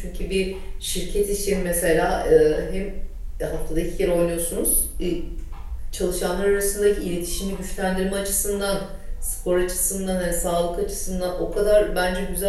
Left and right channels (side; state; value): both; identical; correlation 1.00